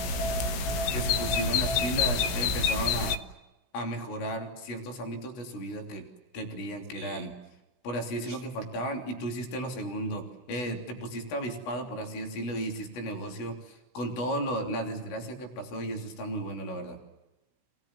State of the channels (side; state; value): right; late; 16 ms